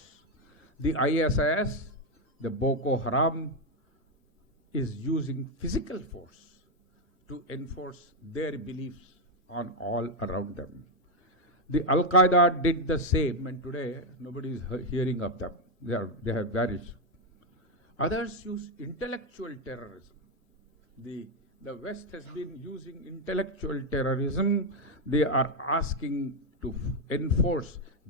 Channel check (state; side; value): normal; both; correlation 0.05